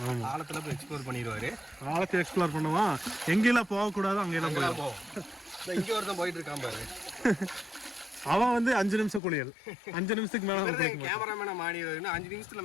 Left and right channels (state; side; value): drops out; right; at 9.2 s